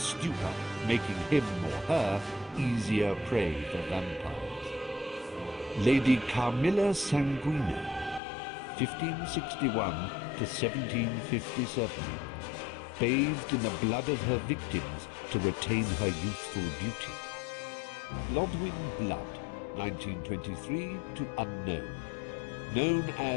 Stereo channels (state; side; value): drops out; right; at 8.2 s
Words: making him or her easier prey for vampires. Lady Carmilla Sanguina, 1561 to 1757, bathed in the blood of her victims to retain her youthful beauty. Lodwyn Blood, 1923 to unknown, known